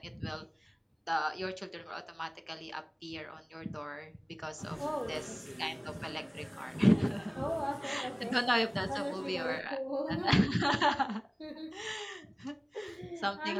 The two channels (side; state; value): both; identical; correlation 1.00